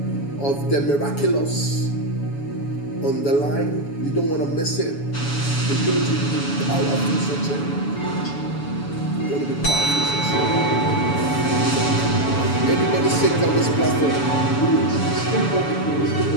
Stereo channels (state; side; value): late; right; 7.1 ms